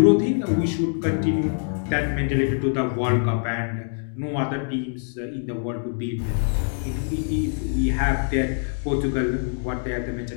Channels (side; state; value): right; silent; digital silence